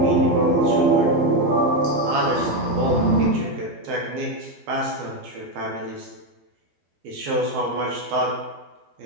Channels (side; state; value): left; late; 12 ms